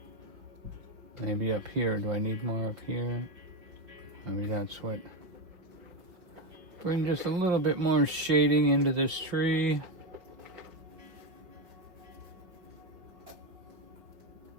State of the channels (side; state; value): left; late; 5.1 ms